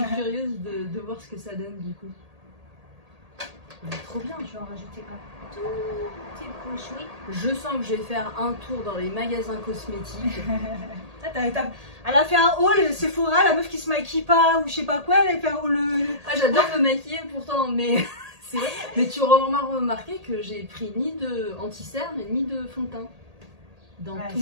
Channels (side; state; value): left; late; 1.8 ms